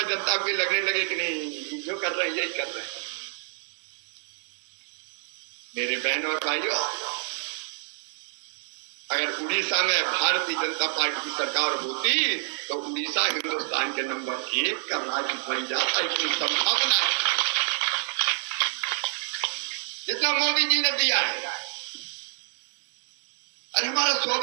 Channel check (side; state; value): left; silent; digital silence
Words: जनता को लगने लगे कि नहीं, जो कर रहे हैं यही कर रहे हैं। मेरे बहन और भाइयों, अगर उड़ीसा में भारतीय जनता पार्टी की सरकार होती तो उड़ीसा हिंदुस्तान के नंबर 1 का राज्य बन जाता। इतनी संभावना है जितना मोदी जी ने दिया है। अरे हमारा